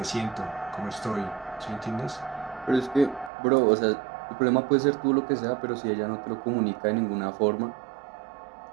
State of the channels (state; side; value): drops out; left; at 3.3 s